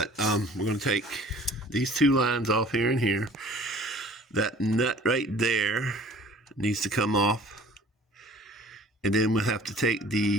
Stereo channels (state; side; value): normal; both; correlation 0.49